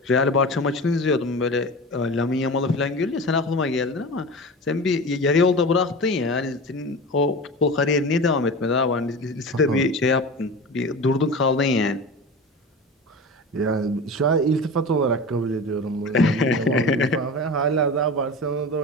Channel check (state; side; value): normal; both; correlation 0.31